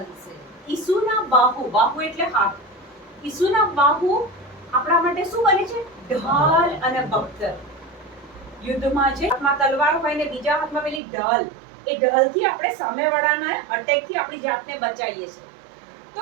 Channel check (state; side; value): drops out; left; at 11.0 s